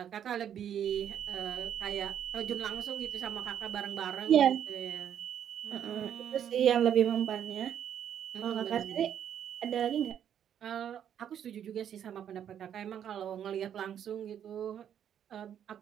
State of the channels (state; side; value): quieter; left; 9.4 dB